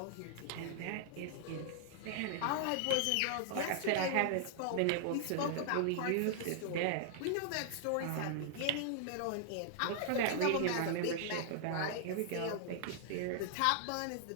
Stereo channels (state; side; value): different; both; correlation -0.01